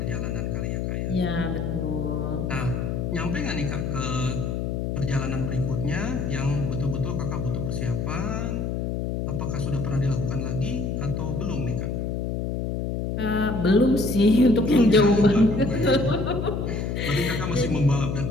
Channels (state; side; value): noise; left; hum, 2 dB below the sound